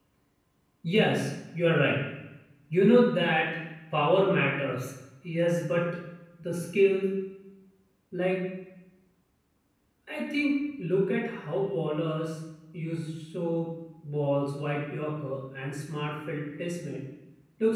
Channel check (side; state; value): both; identical; correlation 1.00